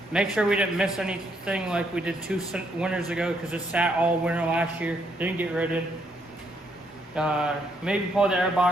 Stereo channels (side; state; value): both; normal; correlation 0.73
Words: make sure we didn't miss anything like we did 2 winters ago because it sat all winter last year, didn't get rid of. Maybe pull the air